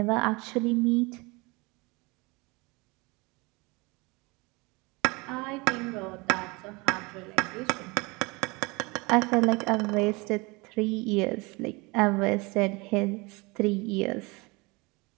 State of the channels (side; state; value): left; quieter; 26.0 dB